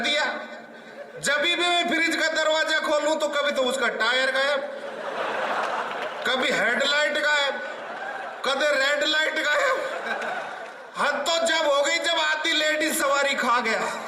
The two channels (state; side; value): identical; both; correlation 1.00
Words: जब भी मैं फ्रिज का दरवाजा खोलूं तो कभी तो उसका टायर गायब, कभी हेडलाइट गायब, कभी रेड लाइट गायब। हद तो जब हो गई जब आधी लेडीज सवारी खा गया।